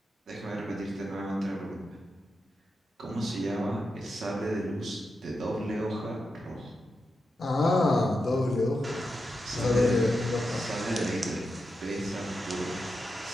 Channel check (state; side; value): normal; both; correlation 0.88